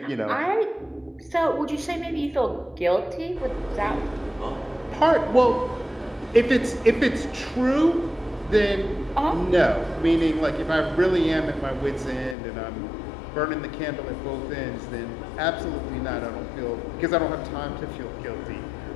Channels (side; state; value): right; drops out; at 12.4 s